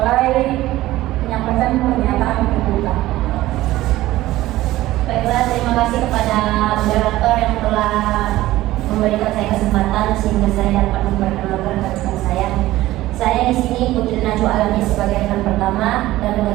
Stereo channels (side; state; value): left; quieter; 16.3 dB